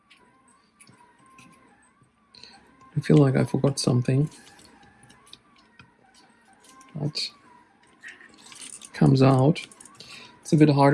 I feel like I forgot something. But it comes out. It's a bit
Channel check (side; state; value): both; identical; correlation 1.00